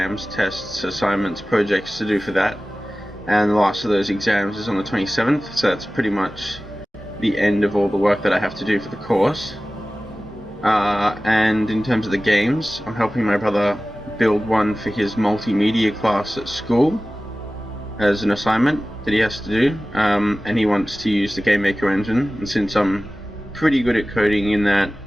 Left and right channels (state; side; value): normal; both; correlation 0.97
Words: tests, assignments, projects to do for that. And the last of those exams is on the 27th, so that's pretty much the end of all the work that I have to do for the course. And in terms of the games, I'm helping my brother build one for his multimedia class at school as an assignment that he has to do, and he wants to use the GameMaker engine, and since I'm pretty good at coding in that,